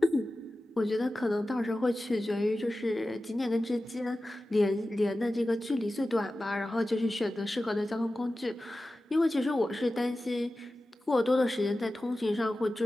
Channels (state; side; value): normal; both; correlation 0.95